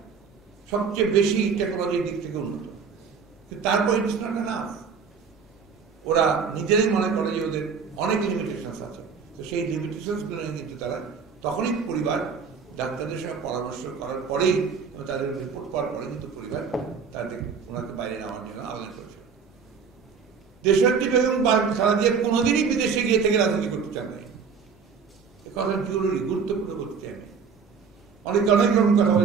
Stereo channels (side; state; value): left; quieter; 5.9 dB